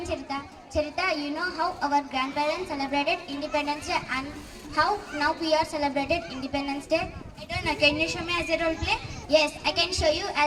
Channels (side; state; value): both; identical; correlation 1.00